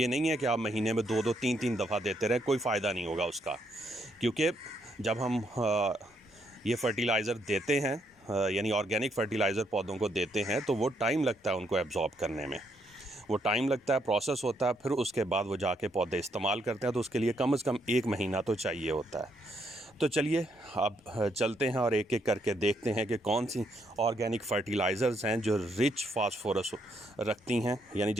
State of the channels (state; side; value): normal; both; correlation 0.74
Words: नहीं है कि आप महीने में 2-2 3-3 दफ़ा देते रहें, कोई फ़ायदा नहीं होगा उसका। क्योंकि जब हम ये फ़र्टिलाइज़र देते हैं, यानी ऑर्गेनिक फ़र्टिलाइज़र पौधों को देते हैं, तो वो टाइम लगता है उनको एब्ज़ॉर्ब करने में, वो टाइम लगता है, प्रोसेस होता है, फिर उसके बाद वो जाके पौधे इस्तेमाल करते हैं। तो उसके लिए कम से कम 1 महीना तो चाहिए होता है। तो चलिए अब चलते हैं और एक एक करके देखते हैं कि कौन सी ऑर्गेनिक फ़र्टिलाइज़र्स हैं जो रिच फास्फोरस रखती हैं, यानी